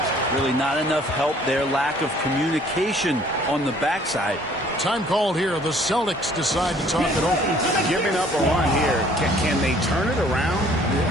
Really not enough help there. Lack of communication on the backside. Time called here. The Celtics decide to talk it over. Giving up a run here. Can they turn it around?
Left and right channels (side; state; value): both; normal; correlation 0.57